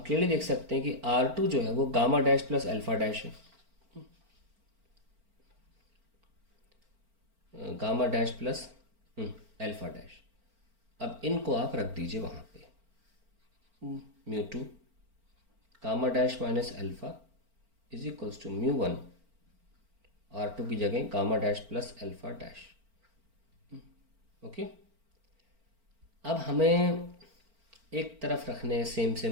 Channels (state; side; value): late; left; 4.4 ms